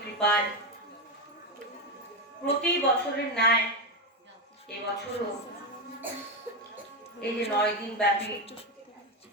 কৃপায় প্রতি বছরের ন্যায় এবছরও এই যে 9 দিন ব্যাপী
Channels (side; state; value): both; normal; correlation 0.10